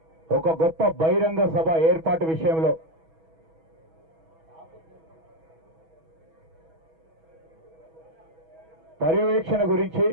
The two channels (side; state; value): left; late; 6.2 ms